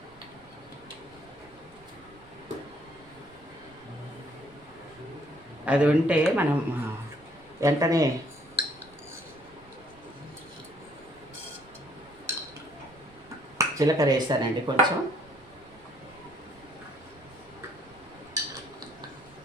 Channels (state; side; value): noise; right; rumble, 26 dB below the sound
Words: అది ఉంటే మనం వెంటనే జీలకర్ర వేసానండి, కొంచెం